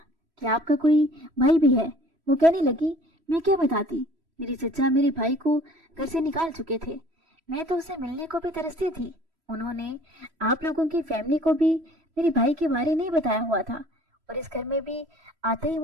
कि आपका कोई भाई भी है। वो कहने लगी, मैं क्या बताती, मेरी चचा मेरे भाई को घर से निकाल चुके थे। मैं तो उससे मिलने को भी तरसती थी। उन्होंने आप लोगों की फैमिली को भी मेरे भाई के बारे नहीं बताया हुआ था और इस घर में भी आते ही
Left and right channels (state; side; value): late; left; 3.0 ms